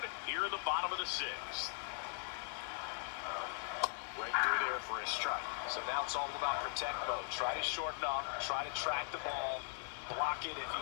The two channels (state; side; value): silent; right; digital silence